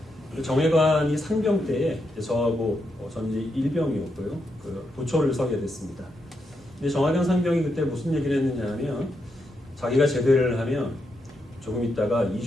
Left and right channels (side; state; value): both; normal; correlation 0.82